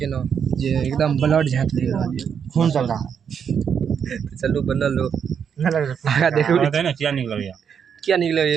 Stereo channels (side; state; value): left; quieter; 7.4 dB